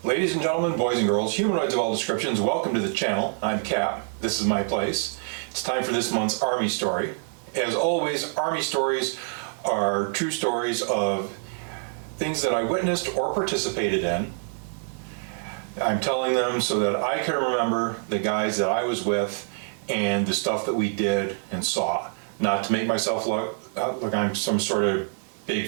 Ladies and gentlemen, boys and girls, humanoids of all descriptions, welcome to the channel. I'm Cap. This is my place. It's time for this month's Army story. As always, Army stories are true stories of things that I witnessed or participated in. I'm telling them so that I can remember the guys that I was with and the stuff that we did and saw. Not to make myself look like I'm some sort of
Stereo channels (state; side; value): silent; left; 61 dB below the other